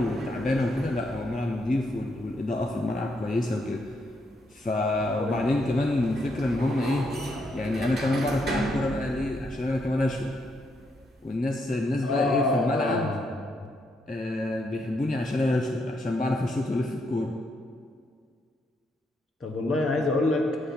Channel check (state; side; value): normal; both; correlation 0.78